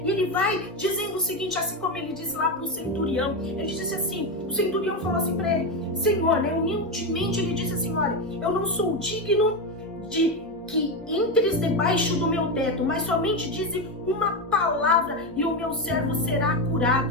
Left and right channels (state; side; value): normal; both; correlation 0.12